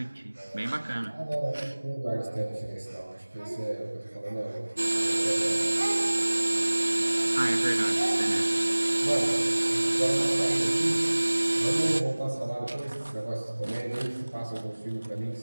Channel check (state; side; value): inverted; both; correlation -1.00